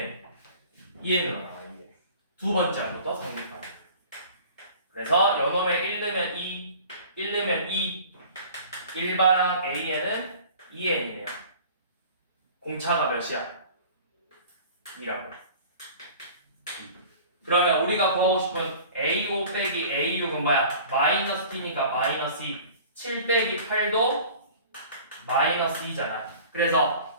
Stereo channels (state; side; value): inverted; both; correlation -0.44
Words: 나와. 2n. 두 번째 항부터 성립하는. 그래서 연놈에 1 넣으면 2, 1 넣으면 2, 일반항 A에는 2n이네요. 공차가 몇이야? 2라고. 그러면 우리가 구하고 싶은 A5 빼기 A6은 뭐야? 마이너스 T니까 마이너스 2. 7 빼기 8도 마이너스 2잖아.